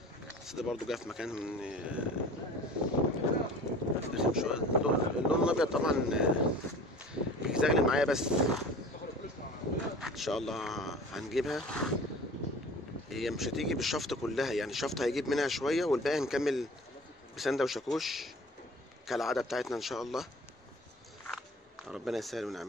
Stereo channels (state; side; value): normal; both; correlation 0.43